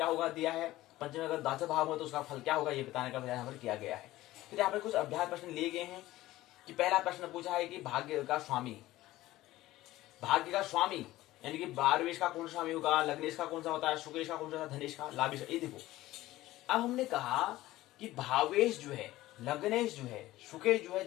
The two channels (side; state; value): right; quieter; 16.5 dB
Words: होगा दिया है, पंचमी अगर 10वें भाव में तो उसका फल क्या होगा ये बताने का यहाँ पर किया गया है। फिर यहाँ पर कुछ अभ्यास प्रश्न लिए गए हैं कि पहला प्रश्न पूछा है कि भाग्य का स्वामी, भाग्य का स्वामी यानी कि बारहवेश का कौन सा स्वामी होगा, लग्नेश का कौन सा होता है, शुक्रेश का कौन सा, धनेश का, लाभेश का। ये देखो अब हमने कहा कि भावेश जो है, लग्नेश जो है, शुक्रेश जो